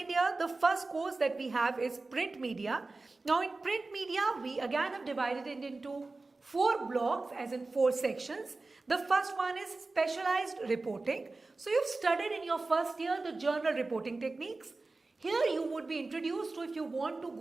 year, the first course that we have is print media. Now in print media, we again have divided it into 4 blocks, as in 4 sections. The first one is specialized reporting. So you've studied in your first year the journal reporting techniques. Here you would be introduced to, if you want to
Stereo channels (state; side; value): quieter; left; 3.4 dB